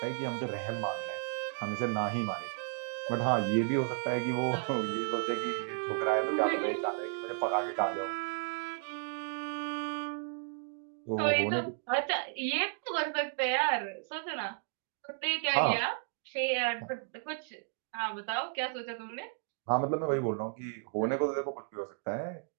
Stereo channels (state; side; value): silent; left; 55 dB below the other